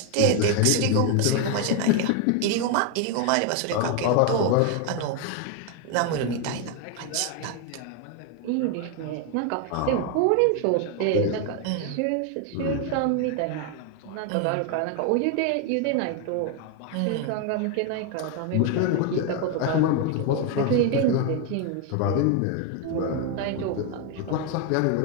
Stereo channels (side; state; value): both; different; correlation 0.01